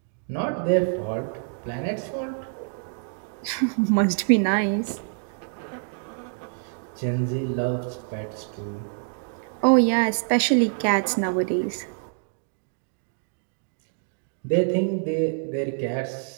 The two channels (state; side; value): silent; left; 61 dB below the other